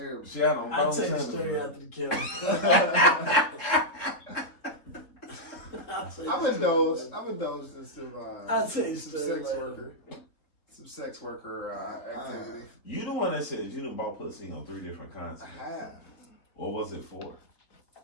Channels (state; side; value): late; right; 3.7 ms